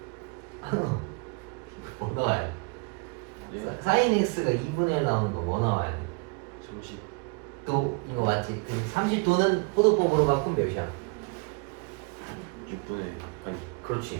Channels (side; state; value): left; quieter; 31.1 dB